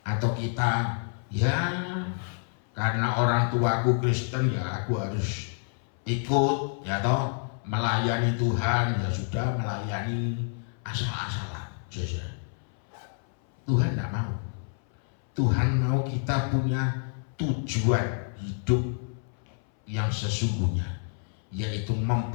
Atau kita, ya karena orang tuaku Kristen ya aku harus ikut, ya toh, melayani Tuhan, ya sudah melayani asal-asalan. Tuhan tidak mau. Tuhan mau kita punya tujuan hidup yang sesungguhnya, yaitu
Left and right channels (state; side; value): silent; right; 59 dB below the other